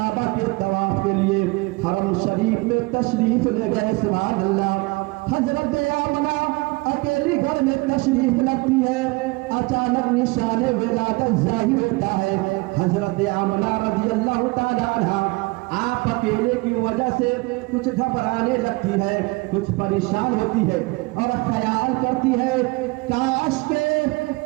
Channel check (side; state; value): left; quieter; 24.9 dB